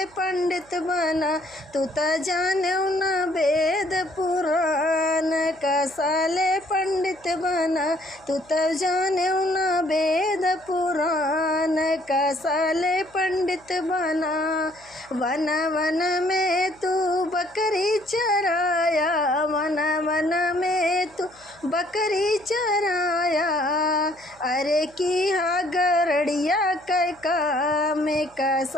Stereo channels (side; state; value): left; noise; hum, 29 dB below the sound